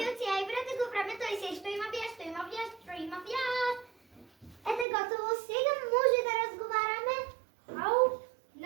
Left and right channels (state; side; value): drops out; left; at 4.9 s